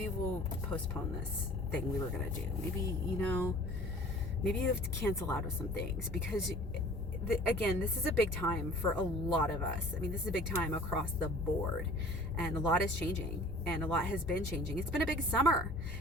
we'll postpone this thing we were going to do. Maybe, you know, maybe you have to cancel out of some things, because again, this is a big time for a lot of us. I mean, this is a big time across the board, and a lot is changing, and a lot has been changing. It's been a big summer,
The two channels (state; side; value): normal; both; correlation 0.47